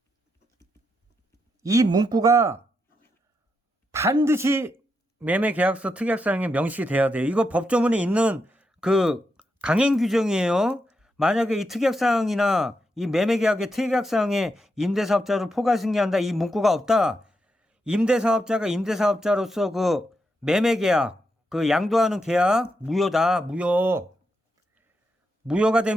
이 문구가 반드시 매매계약서 특약사항에 명시가 돼야 돼요. 이거 법조문에 있는 그 강행 규정이에요. 만약에 이 특약사항이나 이 매매계약의 특약사항에 임대사업자를 포괄 승계한다, 이 문구가 없다. 임대사업자가 임대사업자로서 그 매매계약, 그 양도하는 계약 무효다. 무효가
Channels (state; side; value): normal; both; correlation 0.83